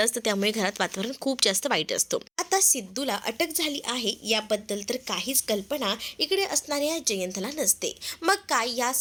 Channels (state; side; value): identical; both; correlation 1.00